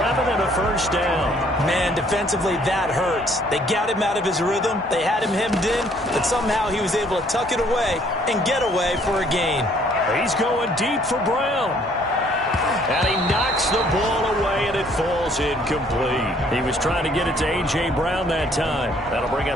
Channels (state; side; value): normal; both; correlation 0.62